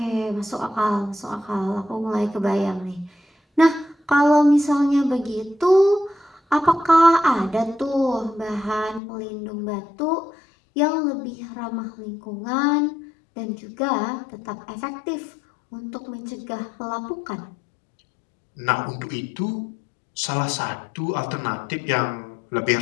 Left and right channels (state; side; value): drops out; right; at 9.0 s